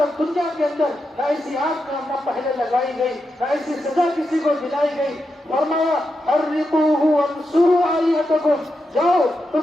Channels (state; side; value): normal; both; correlation 0.87